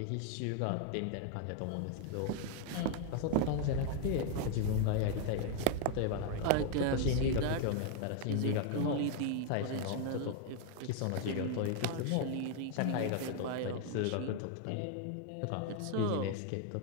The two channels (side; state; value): both; different; correlation 0.00